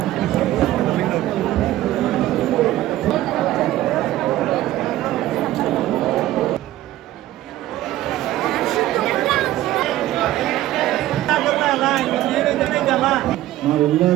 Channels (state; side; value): quieter; left; 14.8 dB